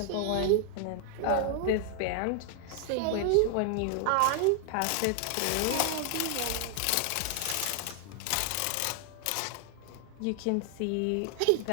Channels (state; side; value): different; both; correlation 0.00